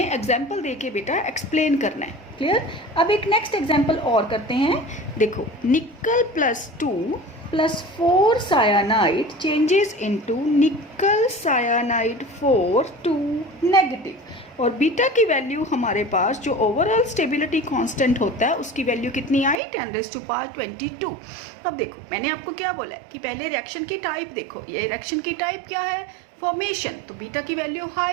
एग्जाम्पल दे के बेटा एक्सप्लेन करना है, क्लियर। अब एक नेक्स्ट एग्जाम्पल और करते हैं। देखो nickel plus 2 plus 4 cyanide changes into nickel cyanide 4 2 negative. और बीटा की वैल्यू हमारे पास जो ओवरऑल स्टेबिलिटी कांस्टेंट होता है उसकी वैल्यू कितनी आई, 10⁻22। अब देखो मैंने आपको क्या बोला है कि पहले रिएक्शन की टाइप देखो। ये रिएक्शन की टाइप क्या है, फॉर्मेशन। तो बीटा की वैल्यू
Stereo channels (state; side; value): drops out; left; at 19.6 s